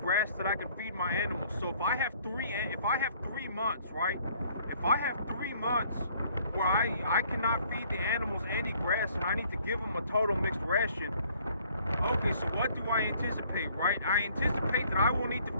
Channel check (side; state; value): both; inverted; correlation -0.60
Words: that I can feed my animals. So if I have 3 months, right? If I have 3 months where I cannot feed the animals any grass and I need to give them a total mixed ration, okay, so what do I anticipate, right? I anticipate that I will need to